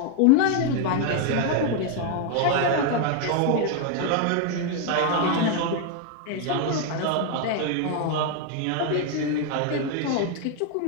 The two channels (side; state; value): both; different; correlation 0.01